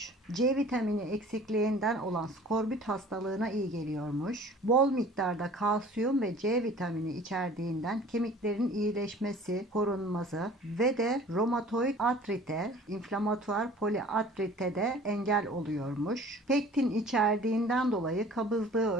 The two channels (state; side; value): normal; both; correlation 0.48